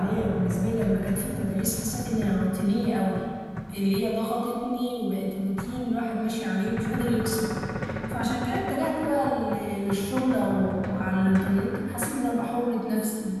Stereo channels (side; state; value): both; identical; correlation 1.00